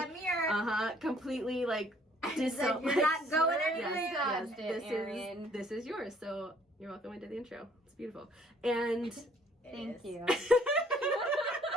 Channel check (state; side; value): normal; both; correlation 0.61